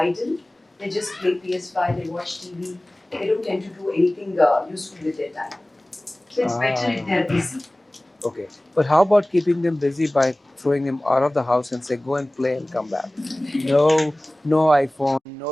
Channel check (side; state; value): both; normal; correlation 0.98